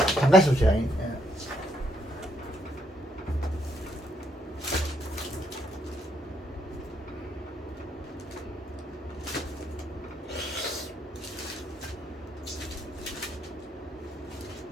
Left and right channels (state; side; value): normal; both; correlation 0.74